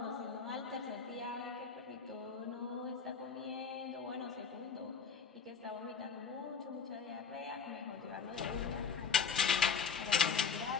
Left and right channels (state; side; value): quieter; right; 6.0 dB